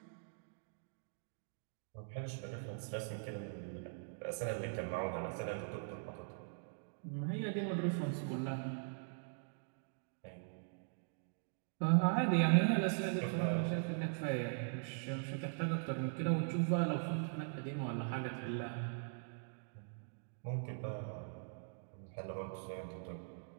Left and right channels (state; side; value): silent; left; digital silence